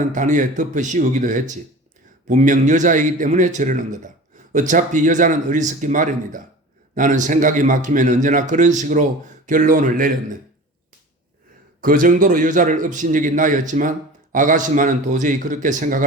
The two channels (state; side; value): normal; both; correlation 0.37